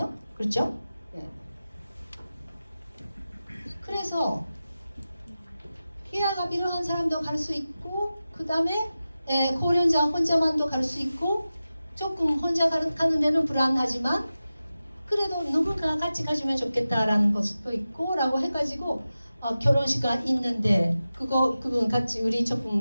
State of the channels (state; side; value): inverted; both; correlation -0.94